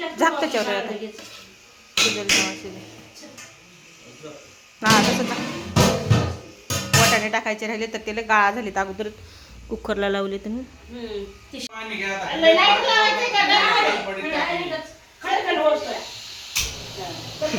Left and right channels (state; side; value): identical; both; correlation 1.00